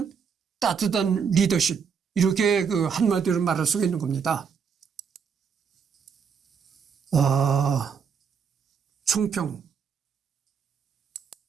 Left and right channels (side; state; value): left; quieter; 6.5 dB